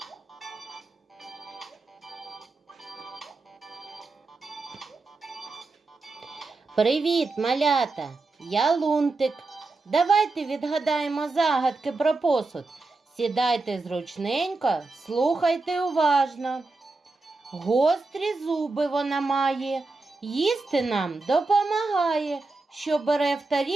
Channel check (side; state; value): left; quieter; 3.6 dB